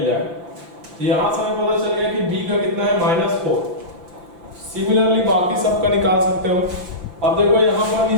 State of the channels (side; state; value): left; late; 5.8 ms